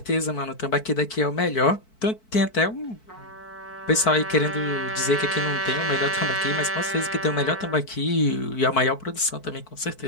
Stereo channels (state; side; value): late; right; 4.5 ms